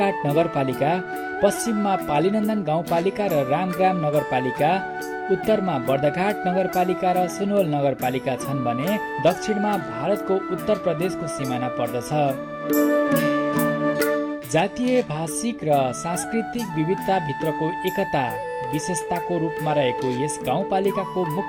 नगरपालिका, पश्चिममा पालीनन्दन गाउँपालिका र रामग्राम नगरपालिका, उत्तरमा बर्दघाट नगरपालिका र सुनवल नगरपालिका छन् भने दक्षिणमा भारतको उत्तर प्रदेशको सिमाना पर्दछ। जातीय, भाषिक र सांस्कृतिक विविधता भित्रको एकता विशेषताको रूपमा रहेको यस गाउँपालिकाको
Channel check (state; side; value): identical; both; correlation 1.00